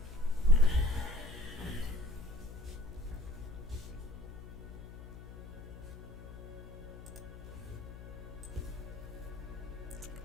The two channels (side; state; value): left; noise; hum, 13 dB below the sound